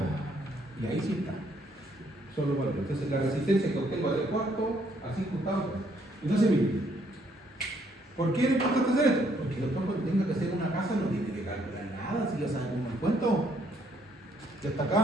Y ahí sí está. Son los valores. Entonces la resistencia que obtengo a 3/4 a 5/8. Entonces miren, ¿por qué es importante hacer esto? Porque después cuando tenga que hacer una casa no tiene que calcular nada, si ya sabe cómo me cuento. Ya está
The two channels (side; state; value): both; normal; correlation 0.68